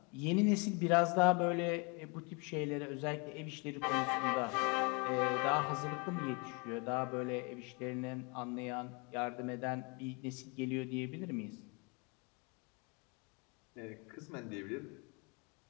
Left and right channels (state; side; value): quieter; right; 32.0 dB